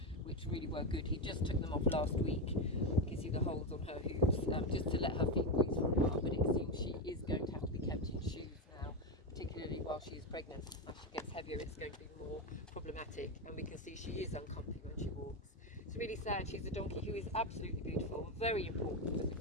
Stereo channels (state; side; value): normal; both; correlation 0.11